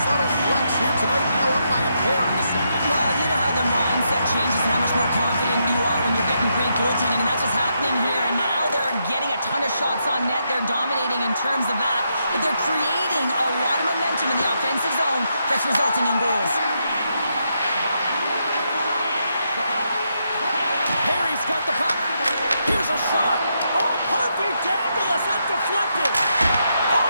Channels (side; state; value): both; inverted; correlation -0.80